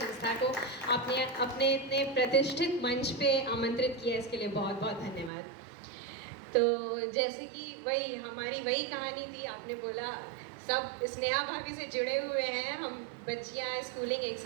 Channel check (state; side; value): drops out; left; at 5.3 s